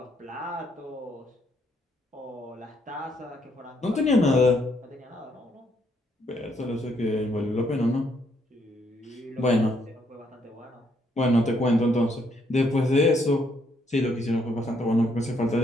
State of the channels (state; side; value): normal; both; correlation 0.72